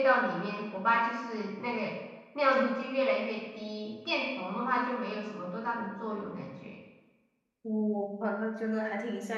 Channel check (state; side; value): identical; both; correlation 1.00